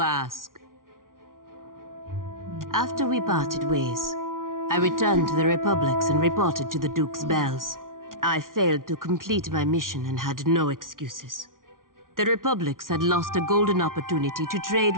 ask. After we parted ways, I returned to the Republics and reported to the Duke's bells. I failed to complete my mission and had no excuses. The Republics had lost a golden opportunity to trade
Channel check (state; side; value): late; left; 0.90 ms